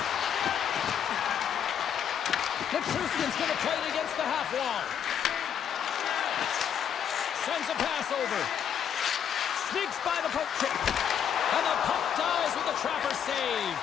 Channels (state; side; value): quieter; right; 8.5 dB